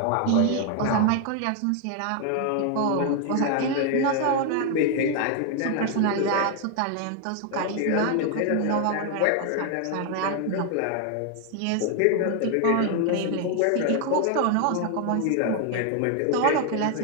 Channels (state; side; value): different; both; correlation 0.00